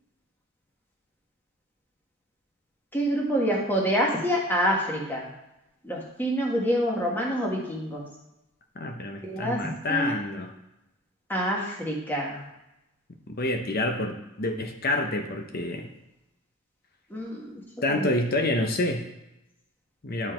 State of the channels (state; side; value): normal; both; correlation 0.39